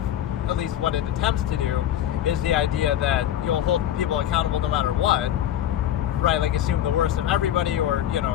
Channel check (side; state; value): right; quieter; 11.4 dB